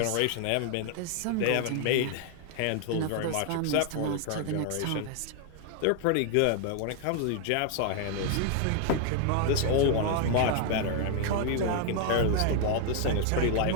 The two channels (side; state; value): both; different; correlation 0.00